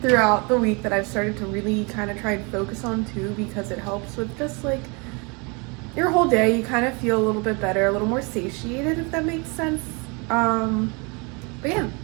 throughout the week that I've started to really kind of try and focus on too, because it helps with just like your whole day. You kind of feel a little bit better, a little more satiated, if that makes sense. But yeah,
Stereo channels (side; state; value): left; quieter; 30.7 dB